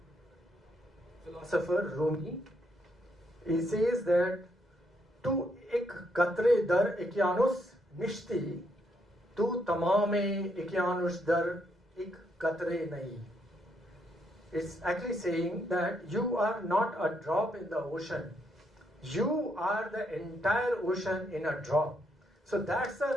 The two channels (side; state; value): both; normal; correlation 0.75